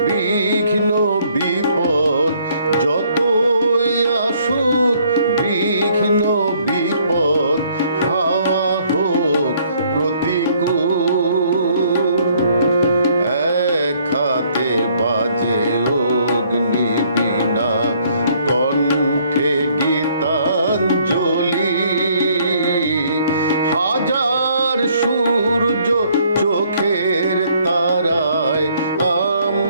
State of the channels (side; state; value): both; inverted; correlation -0.64